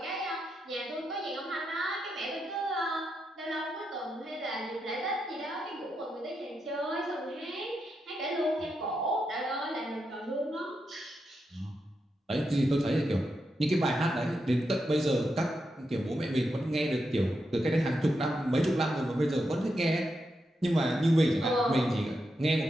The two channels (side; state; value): both; normal; correlation 0.85